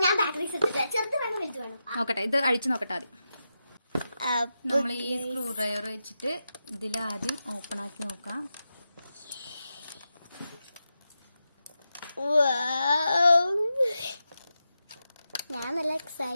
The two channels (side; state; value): both; inverted; correlation -0.89